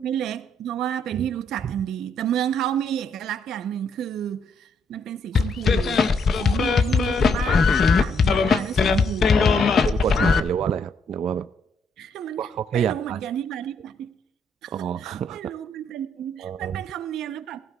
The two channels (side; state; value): both; normal; correlation 0.72